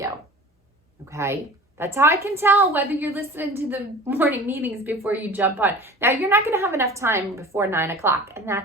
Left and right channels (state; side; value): normal; both; correlation 0.40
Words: Okay? That's how I can tell whether you're listening to the morning meetings before you jump on. Now, you're not going to have enough time before 9 o'clock, and